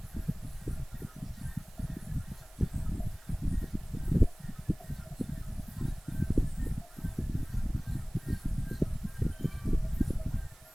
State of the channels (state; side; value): noise; right; hiss, 24 dB below the sound